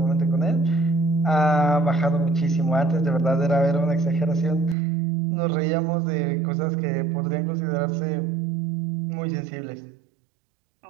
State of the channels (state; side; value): drops out; left; at 4.8 s